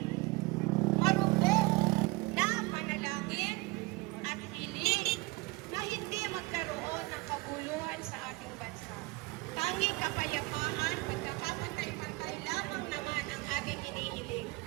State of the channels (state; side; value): quieter; left; 23.8 dB